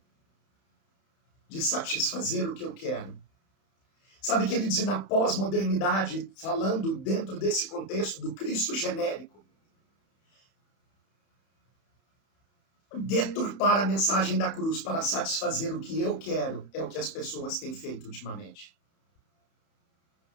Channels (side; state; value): right; late; 31 ms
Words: de satisfazer o que eu quero. Sabe, queridos, e na pós-modernidade, falando dentro desse contexto do Cristo genérico, deturpar a mensagem da cruz para satisfazer o que eu quero é o que as pessoas têm feito ultimamente.